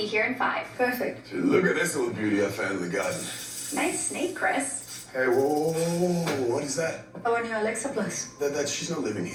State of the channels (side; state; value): both; identical; correlation 1.00